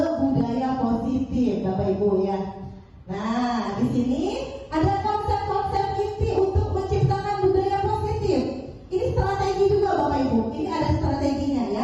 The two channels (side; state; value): both; identical; correlation 1.00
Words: budaya positif, Bapak Ibu ya. Nah, di sini ada konsep-konsep inti untuk menciptakan budaya positif. Ini strategi juga Bapak Ibu. Ini ada strateginya